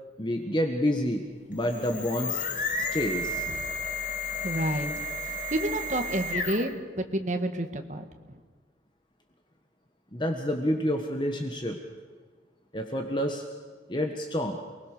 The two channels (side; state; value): both; normal; correlation 0.58